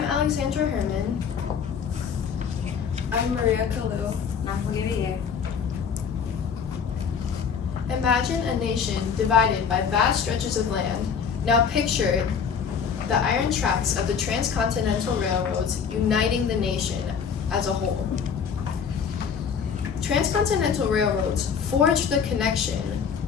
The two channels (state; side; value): quieter; right; 6.7 dB